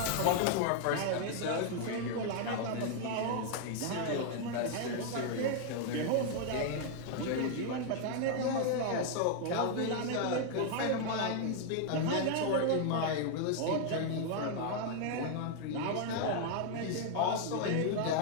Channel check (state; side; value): different; both; correlation 0.00